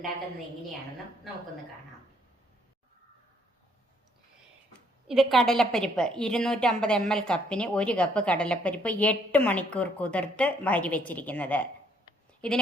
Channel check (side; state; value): both; normal; correlation 0.67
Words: എങ്ങനെയാണെന്നും നമുക്കൊന്ന് കാണാം. ഇത് കടലപ്പരിപ്പ് 250 ml കപ്പിന് 1 കപ്പ് കടലപ്പരിപ്പ് 8 മണിക്കൂർ കുതിർത്ത് വാരി വെച്ചിരിക്കുന്നത്.